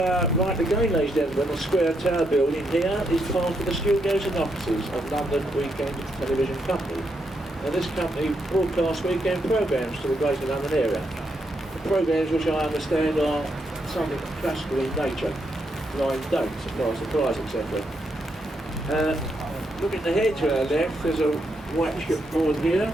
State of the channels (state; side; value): normal; both; correlation 0.79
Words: right again, ladies and gentlemen, the square tower building here is part of the studios and offices of London Weekend Television Company. Now this company broadcasts weekend programmes to the Greater London area. The programmes, which I understand are something classical in nature, blind dates, surprise, etc. Looking ahead to our left, there's a white shipboard here,